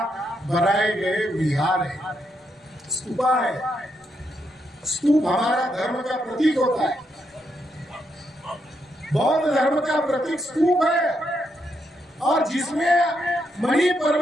बनाए गए विहार है, स्तूपा है। स्तूप हमारा धर्म का प्रतीक होता है। बौद्ध धर्म का प्रतीक स्तूप है, और जिसमें मणि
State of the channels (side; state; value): both; normal; correlation 0.80